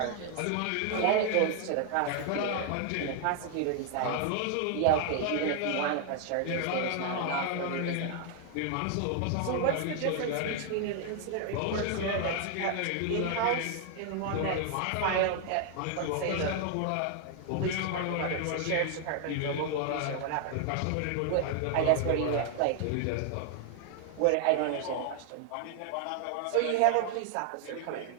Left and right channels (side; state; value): both; different; correlation 0.00